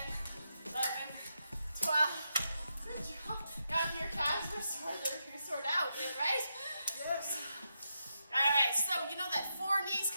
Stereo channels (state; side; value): inverted; both; correlation -0.85